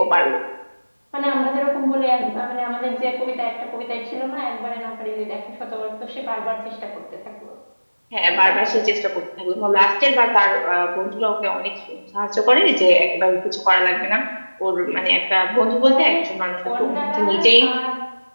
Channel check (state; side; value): inverted; both; correlation -1.00